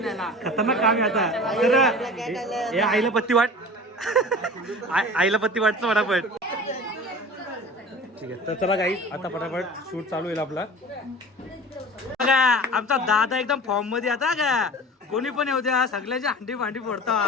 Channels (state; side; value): normal; both; correlation 0.38